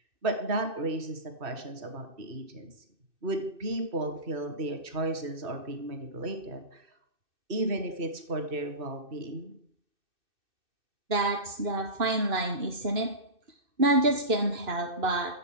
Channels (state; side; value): late; left; 2.6 ms